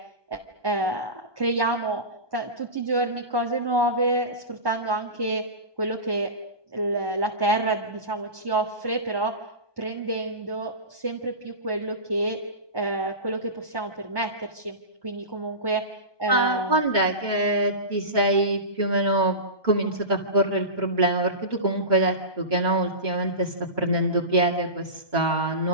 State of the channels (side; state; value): right; late; 1.2 ms